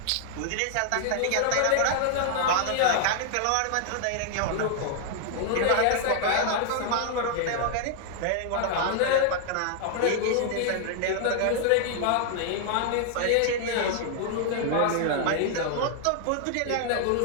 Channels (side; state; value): both; different; correlation 0.00